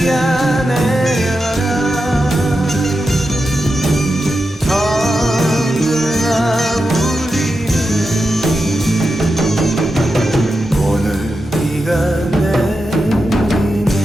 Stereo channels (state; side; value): normal; both; correlation 0.89